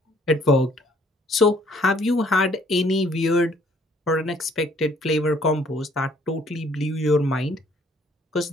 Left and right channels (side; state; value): both; normal; correlation 0.61